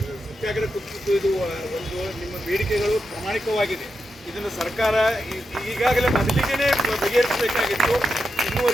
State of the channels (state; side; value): normal; both; correlation 0.87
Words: ಸತ್ಯಾಗ್ರಹ ಕೂತಿದ್ದು ಇದು ಒಂದು ನಿಮ್ಮ ಬೇಡಿಕೆಗಳು ಪ್ರಾಮಾಣಿಕವಾಗಿದೆ. ಇದನ್ನು ಸರ್ಕಾರ ಈಗಾಗಲೇ ಮೊದಲಿಗೆ ಬಗೆಹರಿಸಬೇಕಾಗಿತ್ತು,